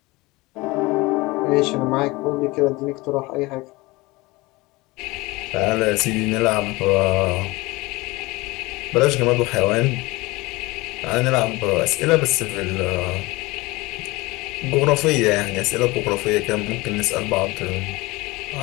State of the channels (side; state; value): right; quieter; 22.2 dB